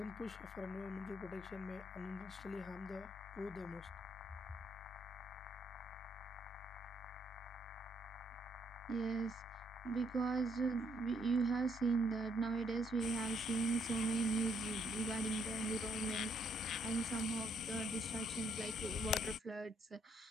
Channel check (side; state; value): both; normal; correlation 0.72